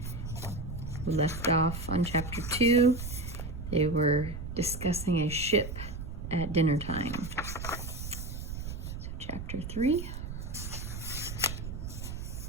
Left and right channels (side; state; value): right; noise; rumble, 7 dB below the sound